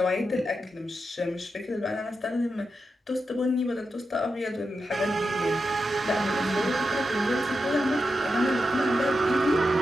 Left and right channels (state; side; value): normal; both; correlation 0.88